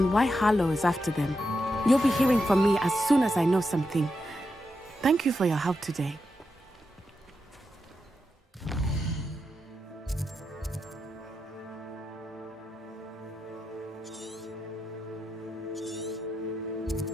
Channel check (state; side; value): normal; both; correlation 0.86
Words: why Harlow is after them. You'll be hearing from me as soon as I know something. Thank you for your help today.